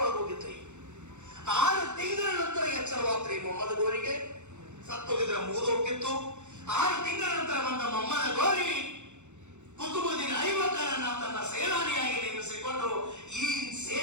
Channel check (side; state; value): left; late; 0.83 ms